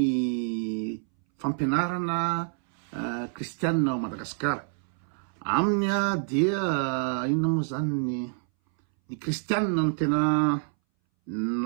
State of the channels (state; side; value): silent; left; 60 dB below the other